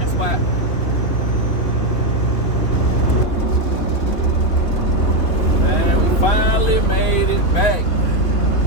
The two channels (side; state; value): right; late; 3.3 ms